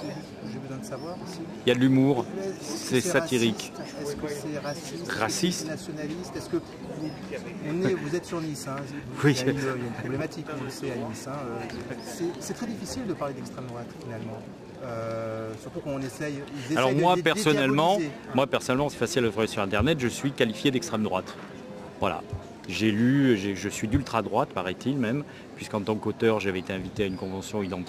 j'ai besoin de savoir aussi. Il y a de l'humour, c'est satirique. Est-ce que c'est raciste? Raciste? Nationaliste? Est-ce que vous êtes sur Nice, hein, Oui. Il y a une problématique, on le sait, à Nice. Hein, c'est très difficile de parler d'extrême droite, finalement. Surtout quand on essaye... Alors moi personnellement, c'est facile de trouver sur Internet, je suis qualifié d'extrême droite. Voilà. J'ai lu, je suis d'ultra droite, paraît-il même, puisqu'en tant qu'auteur, j'avais été invité à une convention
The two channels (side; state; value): both; identical; correlation 1.00